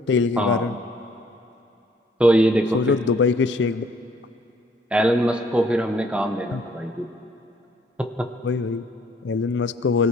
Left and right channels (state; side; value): normal; both; correlation 0.62